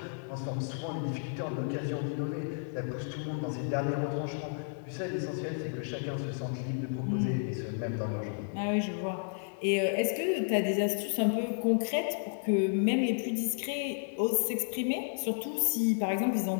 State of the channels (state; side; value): silent; right; digital silence